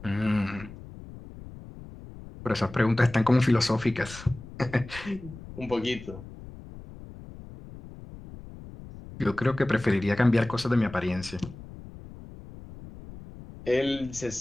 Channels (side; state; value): left; noise; rumble, 16 dB below the sound